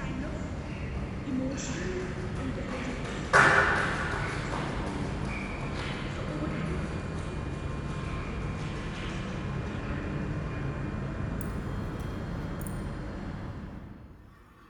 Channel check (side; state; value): both; identical; correlation 1.00